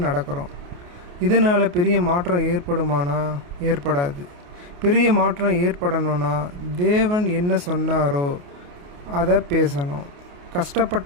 நடக்கிறோம். இதனால் பெரிய மாற்றம் ஏற்படுமானா? ஏற்படாது. பெரிய மாற்றம் ஏற்படணும்னா தேவன் என்ன சொன்னாரோ அதை பேசணும்.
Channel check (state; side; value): late; left; 28 ms